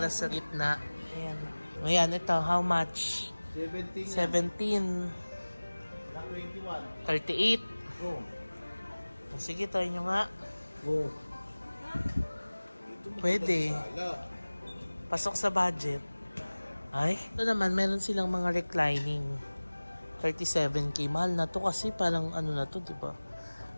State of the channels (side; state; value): both; inverted; correlation -1.00